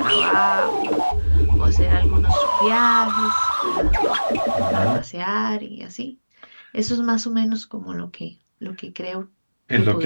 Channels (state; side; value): inverted; both; correlation -1.00